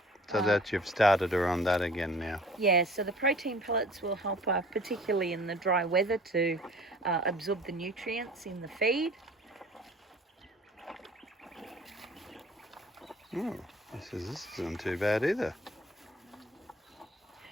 So that you've started her on that again now. Yeah, so the protein pellets will help her, particularly in the dry weather, to absorb the nutrients in the feed. Oh, this isn't too bad either.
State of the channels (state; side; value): normal; both; correlation 0.48